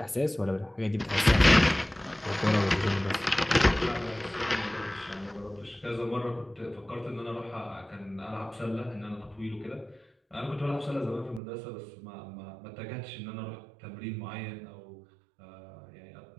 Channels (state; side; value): drops out; left; at 11.4 s